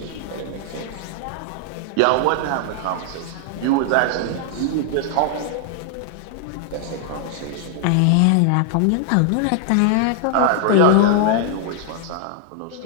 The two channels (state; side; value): different; both; correlation -0.01